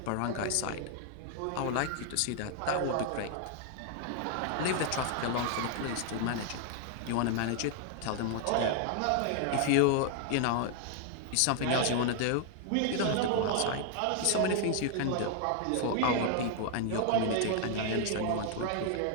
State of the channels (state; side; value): different; both; correlation 0.00